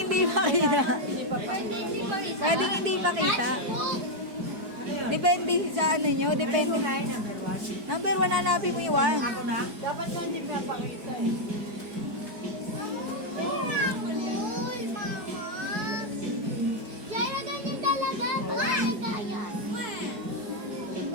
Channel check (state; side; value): late; left; 4.6 ms